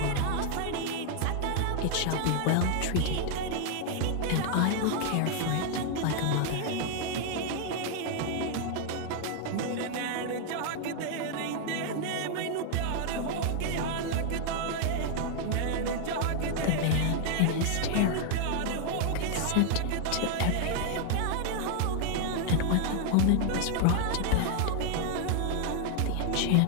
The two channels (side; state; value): both; different; correlation 0.00